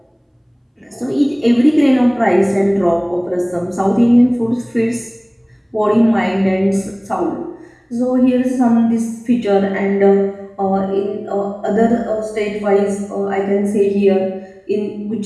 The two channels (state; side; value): identical; both; correlation 1.00